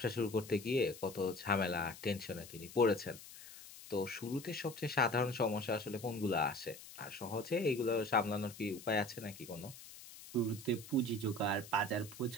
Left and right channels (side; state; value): left; noise; hiss, 16 dB below the sound